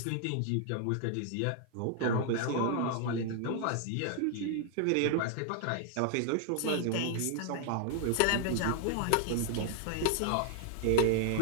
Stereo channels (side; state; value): both; different; correlation 0.00